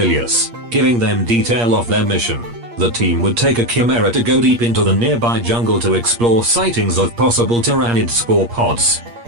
giving them detail of their mission. The team would take a chimera to go deep into the nearby jungle to explore sightings of possible tyrannid spore pods.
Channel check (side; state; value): left; late; 8.5 ms